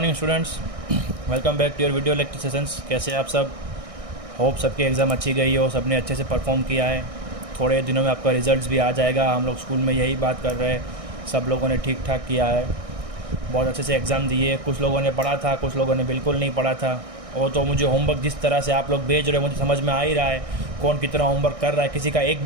students, welcome back to your video lecture sessions. कैसे हैं आप सब? होप सबके एग्ज़ाम अच्छी गई हो, सबने अच्छे से परफॉर्म किया है। थोड़े दिनों में आपका रिजल्ट्स भी आ जाएगा। हम लोग स्कूल में यही बात कर रहे हैं, सब लोगों ने ठीक ठाक किया है, बहुत अच्छे से एग्ज़ाम दिए। कुछ लोगों ने पढ़ा था, कुछ लोगों ने बिल्कुल नहीं पढ़ा था। वो तो मुझे होमवर्क जिस तरह से आप लोग भेज रहे हो मुझे समझ में आ ही रहा है कौन कितना होमवर्क कर रहा है। किसी का एक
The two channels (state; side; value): late; left; 1.6 ms